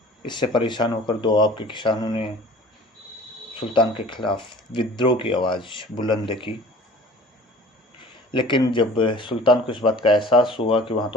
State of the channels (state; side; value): normal; both; correlation 0.45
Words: इससे परेशान होकर दोआब के किसानों ने सुल्तान के खिलाफ विद्रोह की आवाज़ बुलंद की। लेकिन जब सुल्तान को इस बात का एहसास हुआ कि वहाँ